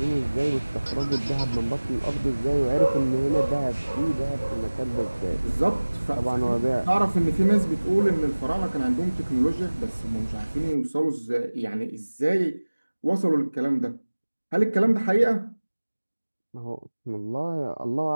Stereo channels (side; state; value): both; inverted; correlation -1.00